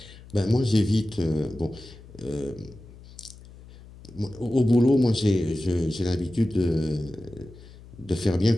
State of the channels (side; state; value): left; noise; hum, 20 dB below the sound